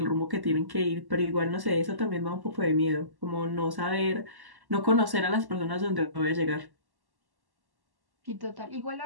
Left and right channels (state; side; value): late; left; 1.1 ms